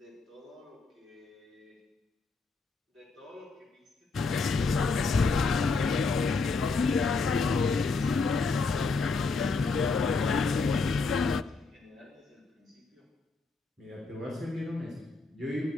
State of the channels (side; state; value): right; quieter; 4.2 dB